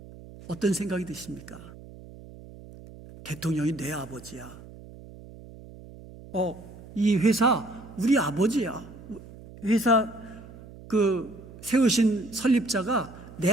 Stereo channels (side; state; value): right; noise; hum, 18 dB below the sound